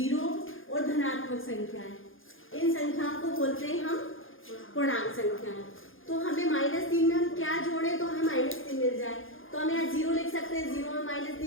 और धनात्मक संख्याएं, इन संख्याओं को बोलते हैं हम पूर्णांक संख्याएं। तो हमें -3 में हम क्या जोड़े तो हमें -3 मिल जाए। तो हम यहाँ 0 लिख सकते हैं, 0 में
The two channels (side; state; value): right; late; 0.59 ms